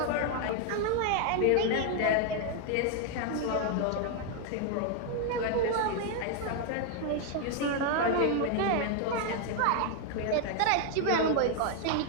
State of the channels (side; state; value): both; different; correlation 0.00